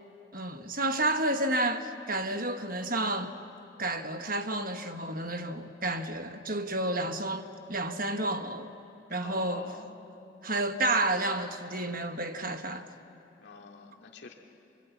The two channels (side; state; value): both; normal; correlation -0.07